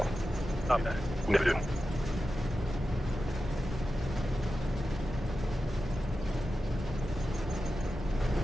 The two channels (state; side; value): normal; both; correlation 0.92